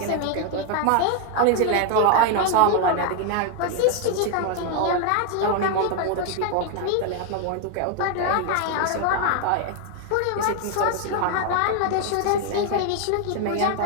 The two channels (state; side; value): different; both; correlation 0.01